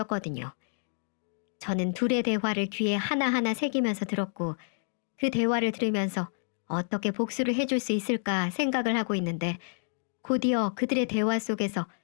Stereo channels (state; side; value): silent; right; digital silence